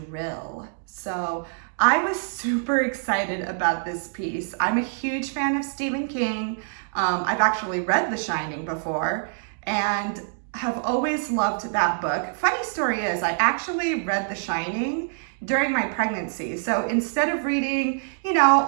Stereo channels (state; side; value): silent; left; digital silence